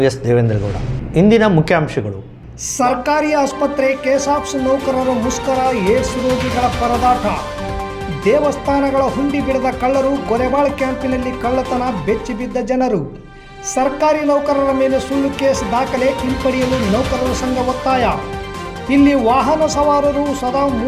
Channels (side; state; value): both; identical; correlation 1.00